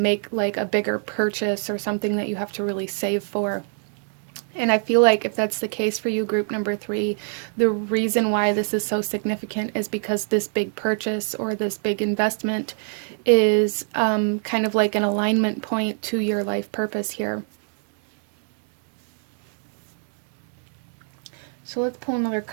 like a bigger purchase or something that you have to really save for. And I feel like if that's the case for you, group number 3, the reason why this is so significant is because this big purchase or this big investment is kind of like an alignment point to your life purpose here. So let's pull another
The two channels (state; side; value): silent; left; 62 dB below the other